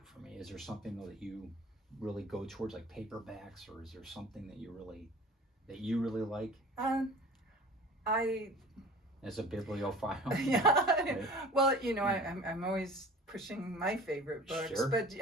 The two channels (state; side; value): normal; both; correlation 0.43